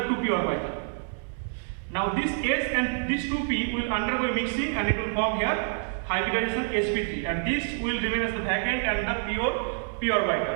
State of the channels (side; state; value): left; silent; 60 dB below the other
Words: orbital. Now this S and this 2p will undergo mixing and it will form here hybridization sp3, and this will remain as the vacant and the pure p